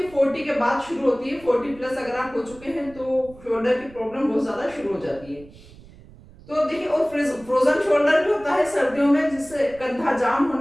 40 के बाद शुरू होती है। 40 प्लस अगर आप हो चुके हैं तो शोल्डर की प्रॉब्लम बहुत ज्यादा शुरू हो जाती है। तो देखिए, और फ्रोजन शोल्डर भी होता है सर्दियों में, जिससे कंधा जाम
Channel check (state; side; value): noise; right; rumble, 22 dB below the sound